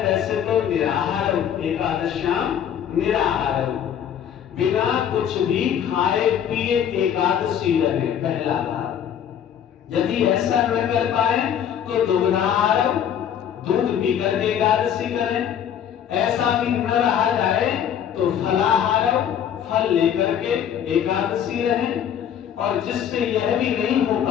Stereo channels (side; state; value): right; quieter; 9.2 dB